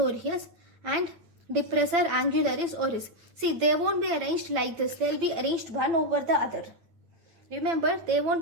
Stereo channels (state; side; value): late; left; 8.9 ms